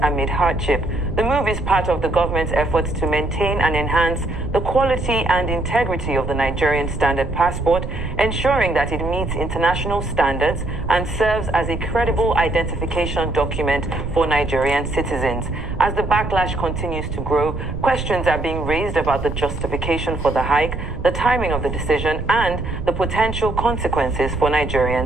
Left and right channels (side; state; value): right; noise; rumble, 6 dB below the sound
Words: amid hardship. The move is part of the government's efforts to maintain and enhance the quality and integrity of the Nigerian Standard Passport, ensuring that it meets international standards and serves as a credible identification document for Nigerian citizens. As the backlash continues to grow, questions are being raised about the justification for the hike, the timing of the decision, and the potential consequences for